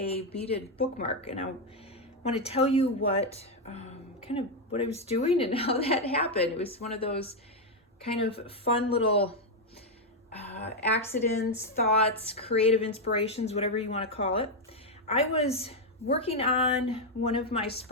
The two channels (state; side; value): normal; both; correlation 0.02